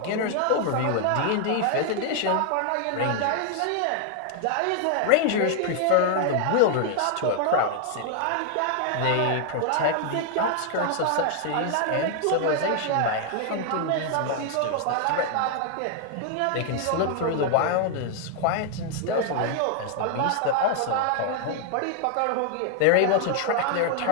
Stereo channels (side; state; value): both; different; correlation 0.00